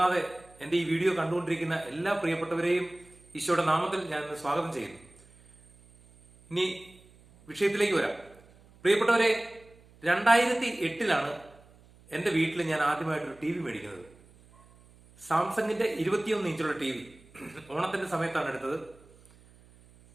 എന്റെ ഈ വീഡിയോ കണ്ടുകൊണ്ടിരിക്കുന്ന എല്ലാ പ്രിയപ്പെട്ടവരെയും ഈശോയുടെ നാമത്തിൽ ഞാൻ ഇന്ന് സ്വാഗതം ചെയ്യുന്നു. ഇനി വിഷയത്തിലേക്ക് വരാം. പ്രിയപ്പെട്ടവരെ, 2008 എന്റെ വീട്ടിൽ ഞാൻ ആദ്യമായിട്ടൊരു ടി വി മേടിക്കുന്നത്. സാംസങ്ങിന്റെ 21 ഇഞ്ചുള്ള ടി വി ഓണത്തിന്റെ സമയത്താണ് എടുത്തത്.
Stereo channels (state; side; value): noise; right; hum, 26 dB below the sound